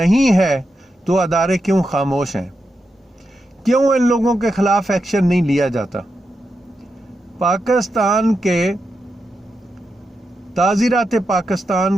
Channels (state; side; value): normal; both; correlation 0.87